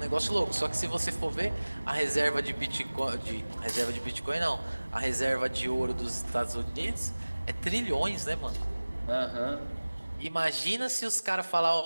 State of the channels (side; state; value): both; inverted; correlation -1.00